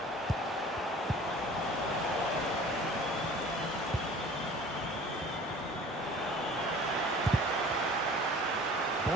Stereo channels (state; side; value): normal; both; correlation 0.46